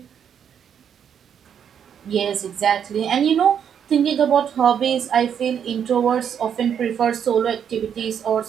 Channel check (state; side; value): quieter; left; 8.3 dB